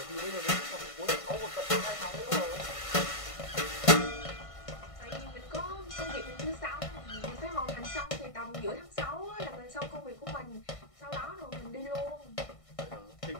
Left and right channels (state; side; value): late; right; 1.6 ms